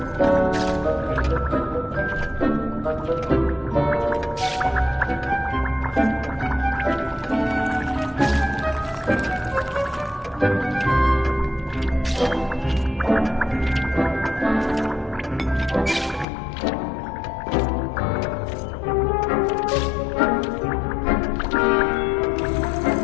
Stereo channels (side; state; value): right; drops out; at 16.2 s